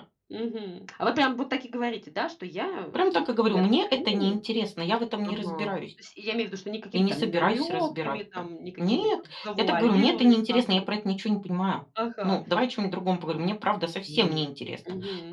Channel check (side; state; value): both; identical; correlation 1.00